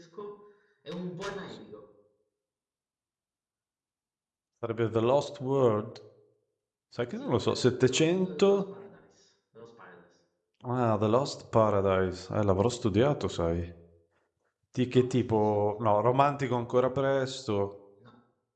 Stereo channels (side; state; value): both; identical; correlation 1.00